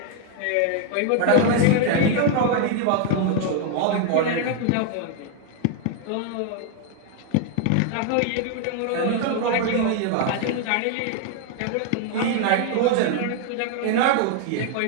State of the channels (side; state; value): both; different; correlation 0.01